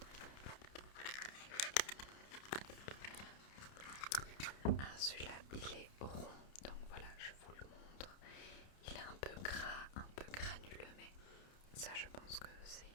Ah, celui-là, il est rond, donc voilà, je vous le montre. Il est un peu gras, un peu granuleux, mais ça, je pense que c'est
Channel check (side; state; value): right; late; 30 ms